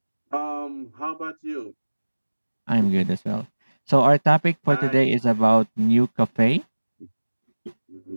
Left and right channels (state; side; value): inverted; both; correlation -1.00